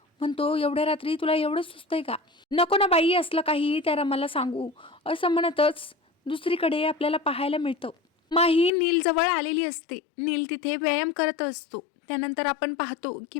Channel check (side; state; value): right; drops out; at 8.7 s